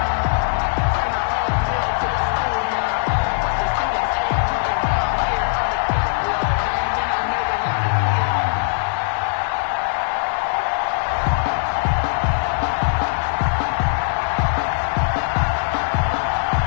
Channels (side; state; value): right; silent; 59 dB below the other